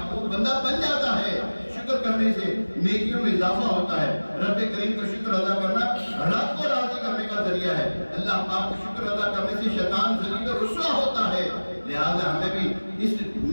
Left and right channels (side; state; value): both; inverted; correlation -1.00